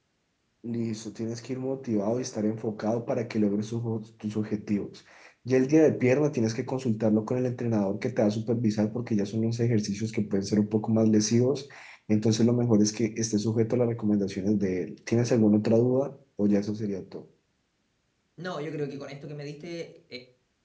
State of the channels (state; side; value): identical; both; correlation 1.00